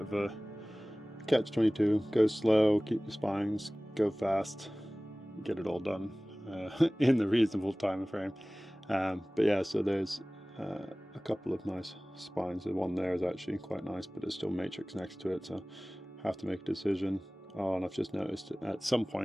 a catch-22. Go slow, keep the spines, go fast, get it all done in the reasonable time frame. But yeah, so there's a couple of nice spines. The one there is actually quite nice, but it's still matrix next to it, so I have to make a decision. Oh, and I've just noticed at some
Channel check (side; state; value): both; normal; correlation 0.98